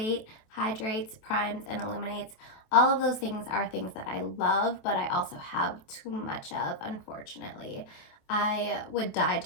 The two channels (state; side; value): late; right; 27 ms